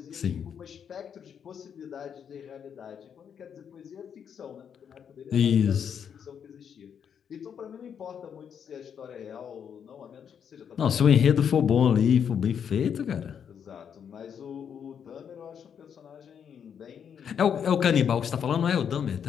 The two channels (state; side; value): quieter; right; 7.9 dB